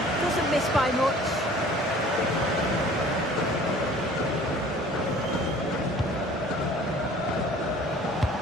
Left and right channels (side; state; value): both; normal; correlation 0.49